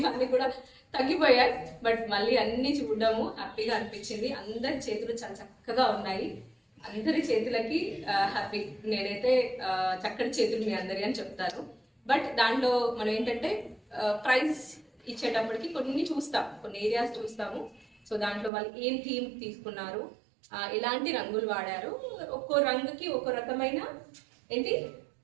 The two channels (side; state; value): left; drops out; at 18.5 s